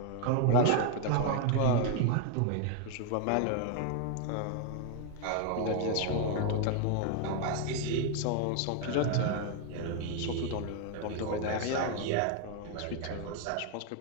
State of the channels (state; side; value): different; both; correlation 0.00